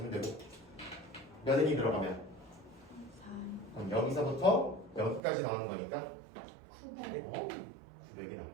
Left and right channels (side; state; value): left; drops out; at 5.2 s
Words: 되고 몇 n이 들어가면 4 그럼 여기서부터 여기까지 나오는 거니까 900 900이